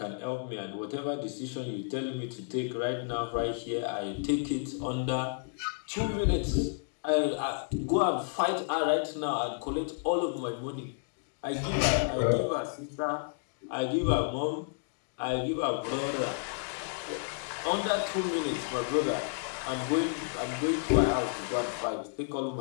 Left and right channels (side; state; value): right; silent; digital silence